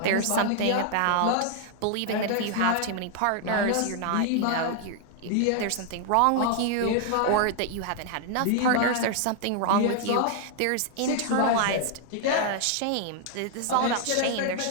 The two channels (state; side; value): different; both; correlation 0.00